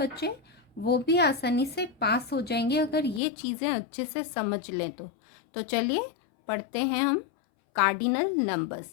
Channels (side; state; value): right; drops out; at 3.2 s